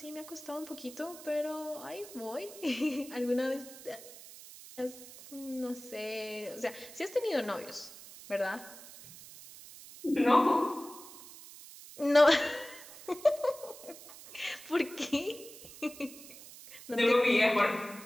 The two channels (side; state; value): right; noise; hiss, 17 dB below the sound